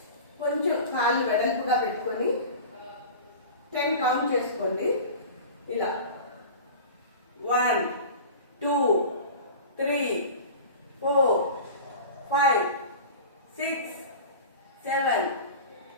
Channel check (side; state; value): both; inverted; correlation -0.35